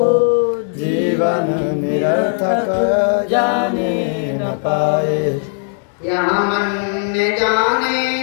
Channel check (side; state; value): right; silent; digital silence